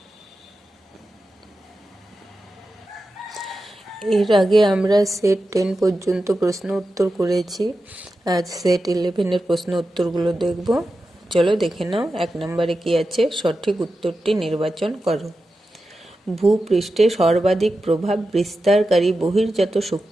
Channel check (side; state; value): both; normal; correlation 0.91